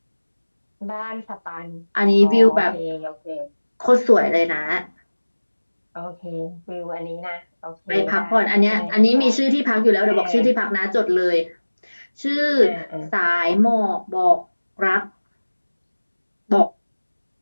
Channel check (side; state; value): both; inverted; correlation -1.00